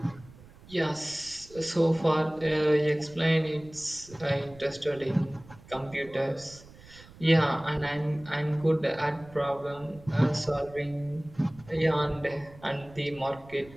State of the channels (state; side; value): noise; right; rumble, 21 dB below the sound